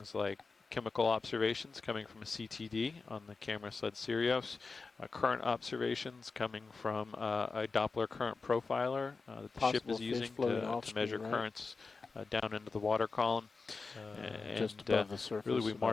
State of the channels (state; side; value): quieter; right; 4.3 dB